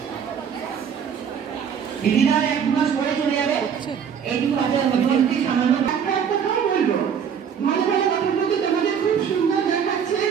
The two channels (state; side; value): quieter; left; 7.5 dB